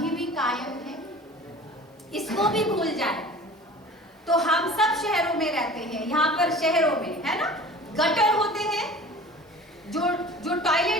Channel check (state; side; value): normal; both; correlation 0.41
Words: भी कायम है, इसको भी भूल जाए। तो हम सब शहरों में रहते हैं, यहाँ पर शहरों में है ना, गटर होते हैं, जो